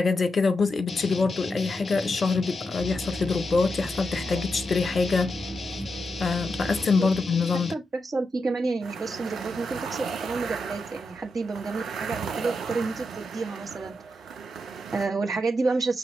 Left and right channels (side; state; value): both; normal; correlation 0.86